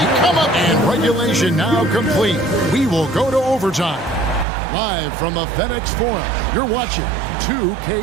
come up. And regulation now complete. We will go to overtime. Live from the FedEx Forum, you're watching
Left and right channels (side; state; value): left; drops out; at 4.5 s